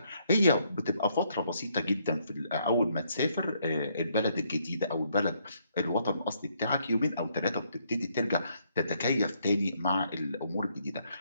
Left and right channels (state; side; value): inverted; both; correlation -0.72